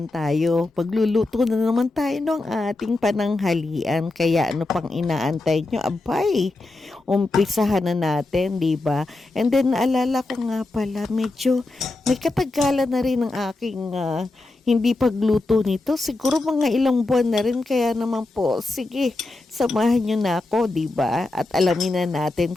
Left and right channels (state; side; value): quieter; right; 3.1 dB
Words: tayo. Pagluluto na naman tayo ng ating pananghalian. Kaya ano pang inaantay nyo? Abay, umpisahan na natin, di ba? And then naalala ko nga pala, medyo may katagalan na rin ang aking hindi pagluto nito. Siguro mga ilang buwan na rin. Kaya naman po, sige, samahan nyo na ako, di ba? At alamin na natin